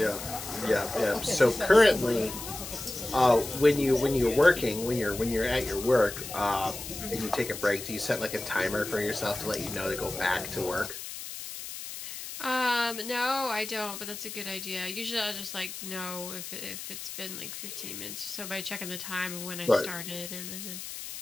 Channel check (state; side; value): noise; left; hiss, 9 dB below the sound